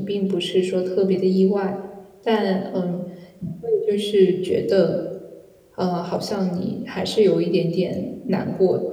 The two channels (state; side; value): identical; both; correlation 1.00